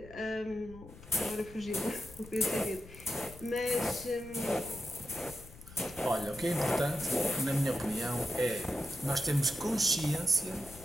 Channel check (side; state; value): left; noise; rumble, 18 dB below the sound